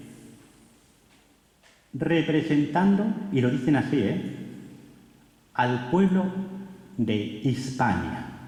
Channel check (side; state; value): both; identical; correlation 1.00